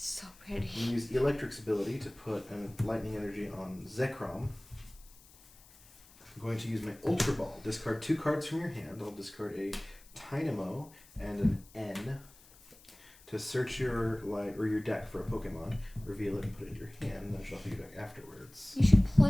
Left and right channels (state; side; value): noise; left; hiss, 24 dB below the sound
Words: pretty. I'm going to use Electric's ability to put a lightning energy on Zekrom. I'm going to use my Ultra Ball. Discard 2 cards from your hand. I'll discard a Tynamo and an N to search your deck for a Pokemon, reveal it and put it in your hand, and then shuffle your deck afterwards. You should